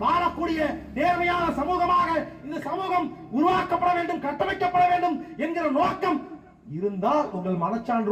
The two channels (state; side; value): identical; both; correlation 1.00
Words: வாழக்கூடிய நேர்மையான சமூகமாக இந்த சமூகம் உருவாக்கப்பட வேண்டும், கட்டமைக்கப்பட வேண்டும் என்கிற நோக்கம் இருந்தால் உங்கள்